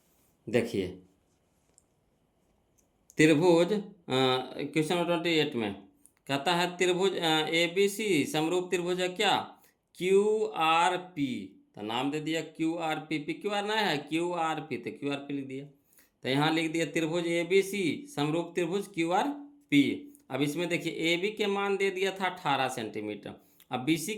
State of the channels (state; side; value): identical; both; correlation 1.00